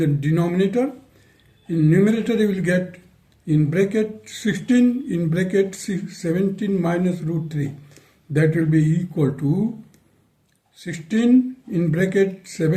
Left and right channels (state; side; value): identical; both; correlation 1.00